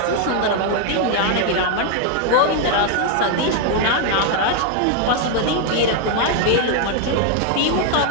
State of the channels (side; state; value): both; different; correlation 0.01